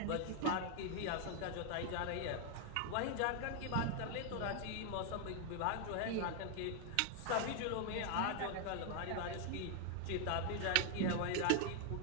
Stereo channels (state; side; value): different; both; correlation 0.00